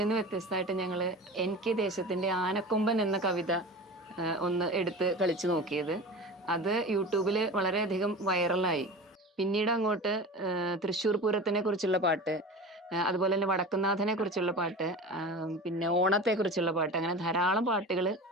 വ്യത്യസ്തമായിട്ട് ഞങ്ങൾ എനിക്ക് ദേശത്തിന്റെ ആനക്കൊമ്പൻ എന്ന കവിത ഒന്ന് എടുത്ത് കളിച്ചു നോക്കിയത്. അത് യൂട്യൂബിൽ വളരെയധികം വൈറലായി. പിന്നീട് അങ്ങോട്ട് തൃശ്ശൂർ പൂരത്തിനെ കുറിച്ചുള്ള പാട്ട്, അതുപോലെ തന്നെ വടക്കുന്നാഥനെ കുറിച്ചുള്ള പാട്ട്, പിന്നെ ഓണത്തെ കുറിച്ചുള്ള പാട്ട്, അങ്ങനെ ധാരാളം പാട്ടുകൾ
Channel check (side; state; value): both; normal; correlation 0.33